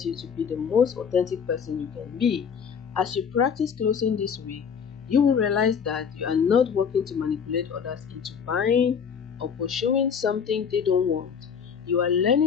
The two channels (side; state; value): right; quieter; 6.9 dB